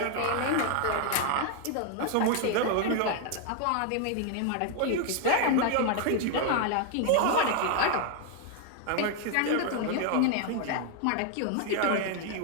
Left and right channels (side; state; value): both; different; correlation 0.00